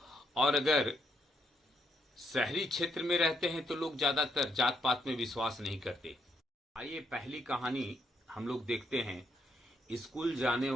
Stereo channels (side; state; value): both; normal; correlation 0.75